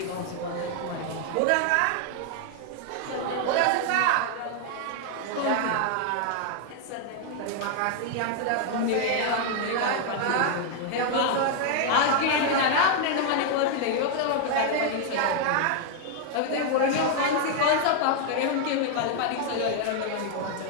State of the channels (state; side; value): different; both; correlation 0.00